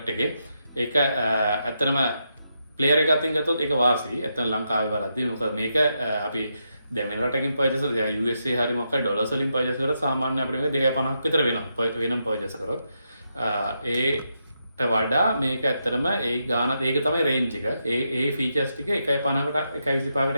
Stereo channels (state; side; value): inverted; both; correlation -0.83